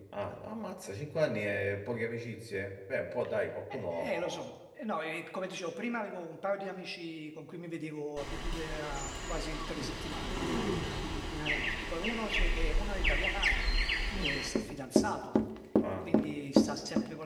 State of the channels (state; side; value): identical; both; correlation 1.00